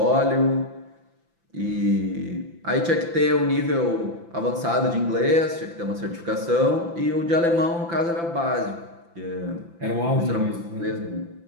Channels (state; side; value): late; left; 5.9 ms